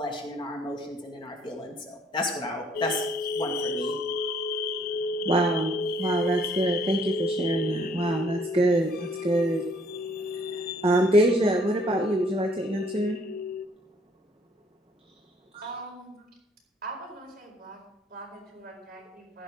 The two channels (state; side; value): normal; both; correlation 0.63